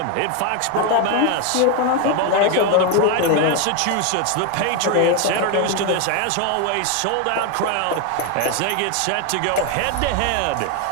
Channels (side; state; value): both; different; correlation 0.01